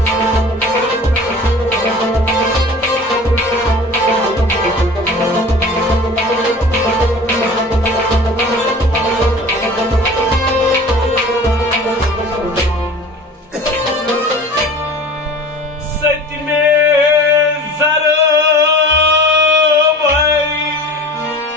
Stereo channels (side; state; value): both; normal; correlation 0.40